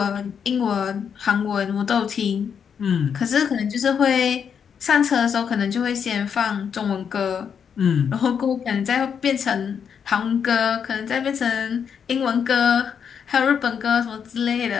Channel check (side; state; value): right; quieter; 7.3 dB